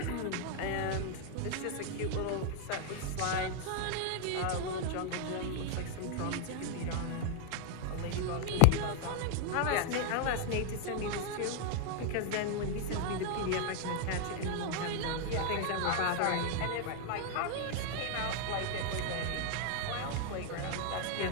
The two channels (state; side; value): different; both; correlation 0.00